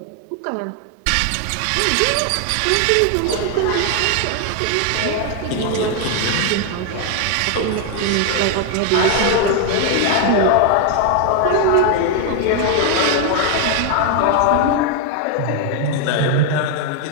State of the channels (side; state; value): both; different; correlation 0.00